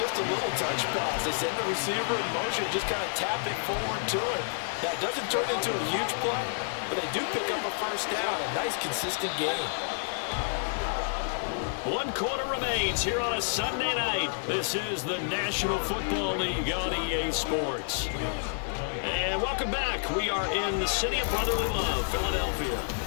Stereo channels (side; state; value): right; silent; 57 dB below the other